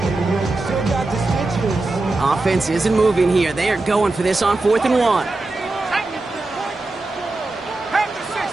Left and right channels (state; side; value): quieter; left; 3.1 dB